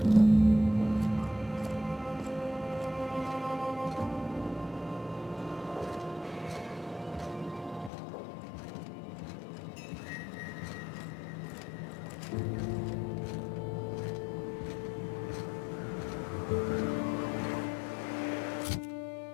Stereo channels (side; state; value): right; drops out; at 7.9 s